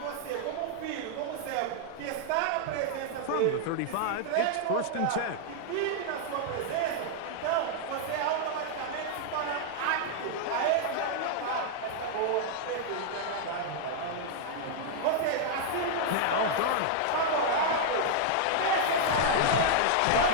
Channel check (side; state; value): both; different; correlation -0.01